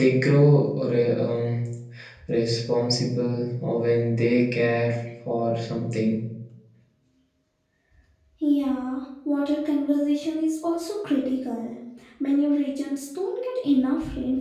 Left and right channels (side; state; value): both; identical; correlation 1.00